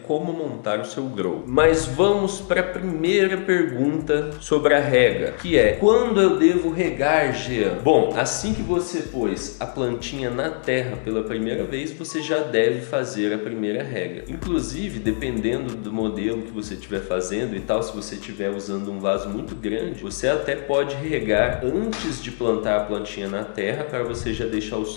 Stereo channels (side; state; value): right; silent; digital silence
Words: como montar o seu grow. Mas vamos para a primeira pergunta sobre a rega, que é: quando eu devo regar, Jean? Bom, assim que você pôs a plantinha na terra pela primeira vez, você já deve fazer a primeira rega. Inclusive, dependendo do modelo que você estiver fazendo e tal, se você estiver usando um vaso muito grande, você até pode regar antes de plantar a plantinha na terra, para você já deixar o